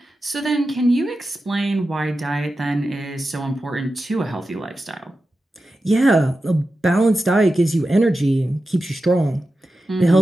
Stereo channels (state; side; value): normal; both; correlation 0.92